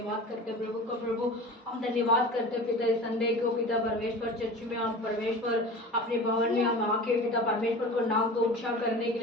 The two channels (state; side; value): normal; both; correlation 0.36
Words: करते प्रभु को प्रभु, हम धन्यवाद करते पिता इस संडे को पिता परमेश्वर चर्च में हम परमेश्वर अपने भवन में हम आके पिता परमेश्वर को नाम को ऊंचा करने के